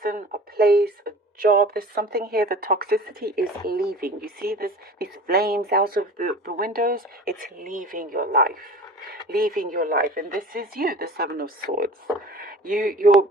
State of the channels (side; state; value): both; normal; correlation 0.41